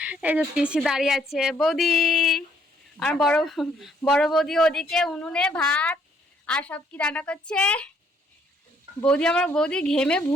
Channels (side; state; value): both; normal; correlation 0.67